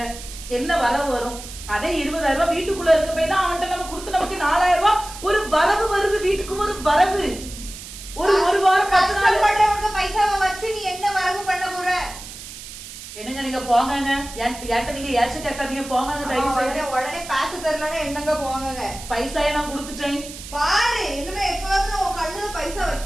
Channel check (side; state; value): right; noise; hiss, 13 dB below the sound